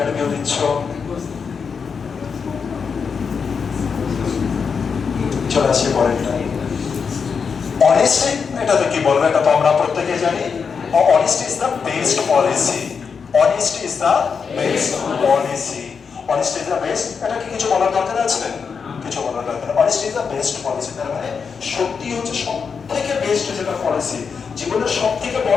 দিচ্ছ, চলে আসি পরেরটা। অনেস্টি, এটা তো কি বলবো, এটা তো আমরা প্রত্যেকে জানি, honesty is the best policy. Honesty is the best policy. Honesty is the best, এটা কি কিছু বলার দরকার আছে? কিছু বলার দরকার। Honesty is the best policy, তার মানে সত্যি হচ্ছে সব থেকে বেস্ট যেটা পলিসি, জীবনের সব থেকে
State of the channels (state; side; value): quieter; right; 5.9 dB